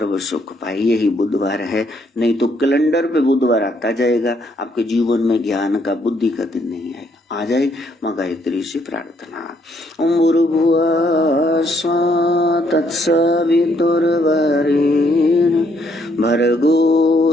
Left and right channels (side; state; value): both; normal; correlation 0.71